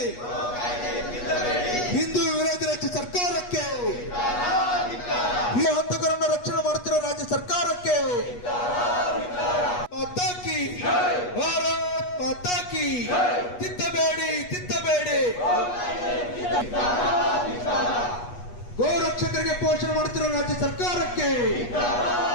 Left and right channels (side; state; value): right; late; 8.3 ms